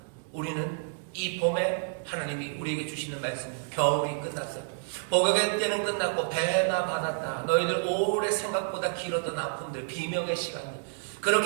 우리는 이 봄에 하나님이 우리에게 주시는 말씀, 겨울이 끝났어요. 복역의 때는 끝났고 배나 받았다. 너희들 오래 생각보다 길었던 아픔들, 비명의 시간들,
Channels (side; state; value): left; silent; digital silence